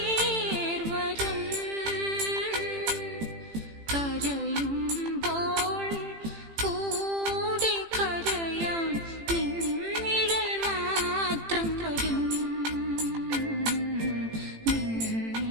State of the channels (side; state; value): left; late; 18 ms